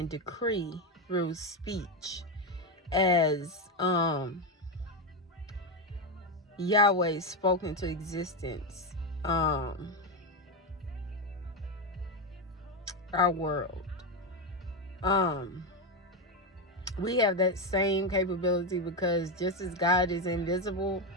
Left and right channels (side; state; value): both; normal; correlation 0.10